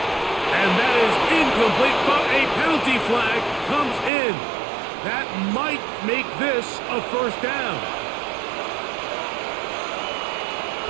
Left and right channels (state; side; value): drops out; left; at 4.1 s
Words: And that is incomplete, but a penalty flag comes in. That might make this a 1st down.